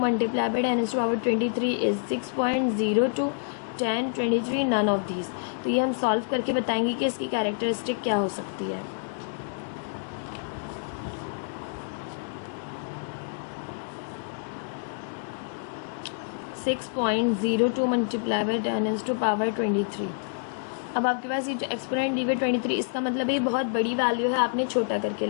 multiplied by 10 to power 23 is 6.02, 10, 23, none of these। तो ये हम सॉल्व करके बताएंगे कि इसकी कैरेक्टरिस्टिक क्या हो सकती है। (6.02 multiplied by 10 to power 23। अब आपके पास ये जो एक्सपोनेंट दी हुई 23, इसका मतलब ये बहुत बड़ी वैल्यू है, आपने छोटा करके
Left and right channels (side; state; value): right; silent; digital silence